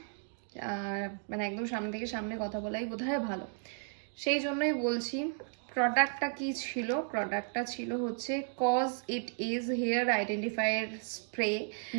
মানে একদম সামনে থেকে সামনে কথা বলাই বোধহয় ভালো। সেই জন্যই বলছি, প্রোডাক্টটা কি ছিল। প্রোডাক্টটা ছিল হচ্ছে cause it is hair identifier spray,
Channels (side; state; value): left; silent; 55 dB below the other